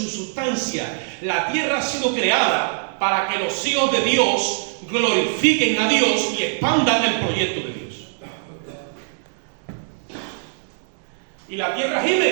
sustancia. La tierra ha sido creada para que los hijos de Dios glorifiquen a Dios y expandan el proyecto de Dios. Y la tierra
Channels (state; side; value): silent; left; digital silence